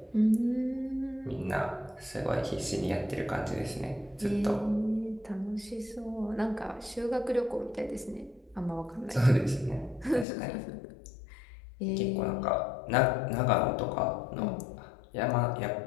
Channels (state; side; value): drops out; right; at 10.2 s